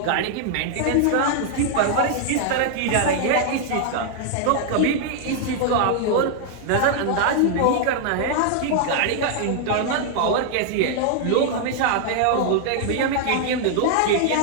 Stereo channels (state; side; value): different; both; correlation 0.00